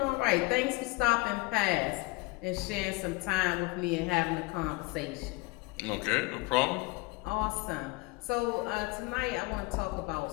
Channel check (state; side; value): quieter; right; 24.2 dB